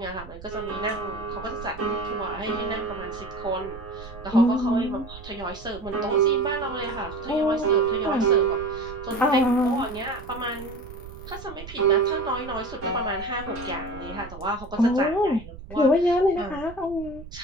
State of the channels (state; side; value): noise; right; rumble, 15 dB below the sound